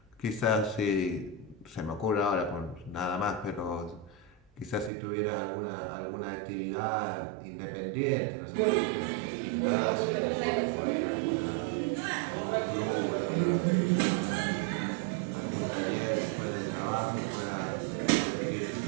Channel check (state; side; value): drops out; left; at 4.9 s